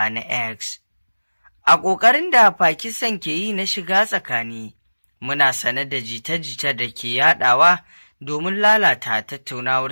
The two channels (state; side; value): inverted; both; correlation -1.00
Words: na X. A ƙoƙarin da Pakistan ke yi na shiga tsakani, muna sanar da jita-jita da ke yaɗawa domin lalata